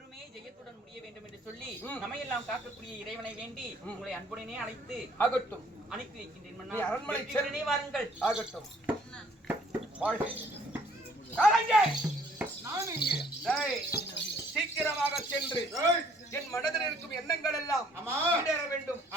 ஜெயத்துடன் முடிய வேண்டும் என்று சொல்லி நம்மையெல்லாம் காக்கக்கூடிய இறைவனை வேண்டி உங்களை அன்புடனே அழைத்து ஆகட்டும். அனுப்பி வைக்கின்றேன் நீ மன்னா. அரண்மனை வெற்றியுடனே வாருங்கள். ஆகட்டும். வாழ்க. காலங்கே. நான் இங்கே. டேய், சீக்கிரமாக சென்று ஏய், என் மனதில் இருக்கும் எண்ணங்கள் எல்லாம் ஆமா. ஈடேற வேண்டும்.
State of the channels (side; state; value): both; normal; correlation 0.60